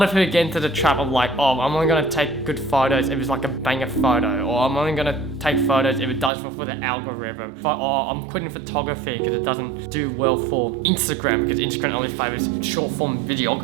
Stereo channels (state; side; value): drops out; left; at 6.3 s